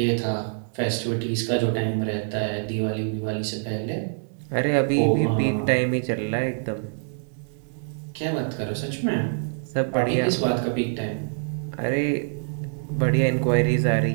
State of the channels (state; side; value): silent; left; 62 dB below the other